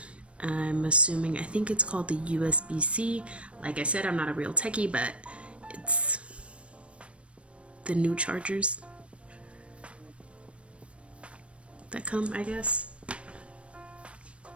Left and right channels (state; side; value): late; left; 0.061 ms